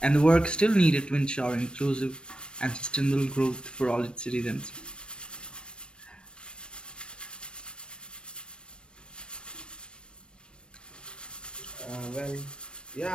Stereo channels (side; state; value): right; late; 0.055 ms